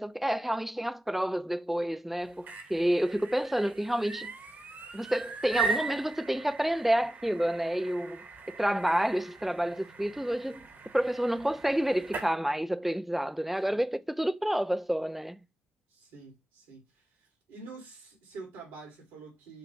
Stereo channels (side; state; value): both; normal; correlation 0.95